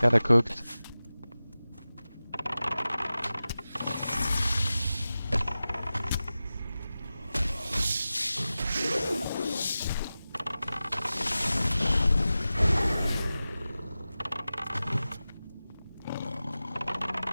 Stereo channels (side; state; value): both; inverted; correlation -0.96